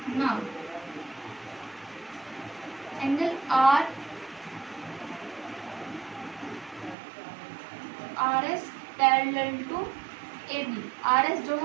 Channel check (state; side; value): drops out; left; at 7.0 s